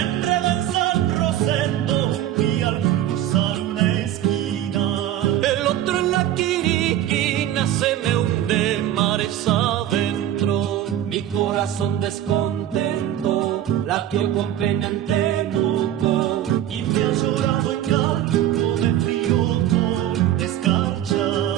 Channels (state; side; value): quieter; left; 11.9 dB